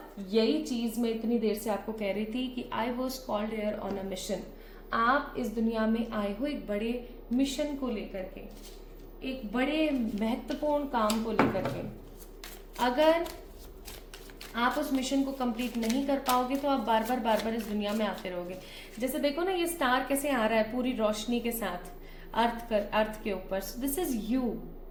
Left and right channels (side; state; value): both; identical; correlation 1.00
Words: यही चीज मैं इतनी देर से आपको कह रही थी कि I was called here on a mission. आप इस दुनिया में आए हो एक बड़े मिशन को लेकर के, एक बड़े महत्वपूर्ण काम को लेकर के। अगर आप उस मिशन को कंप्लीट नहीं कर पाओगे तो आप बार बार इस दुनिया में आते रहोगे। जैसे देखो ना, ये स्टार कैसे आ रहा है पूरी रोशनी के साथ अर्थ के ऊपर। So this is you.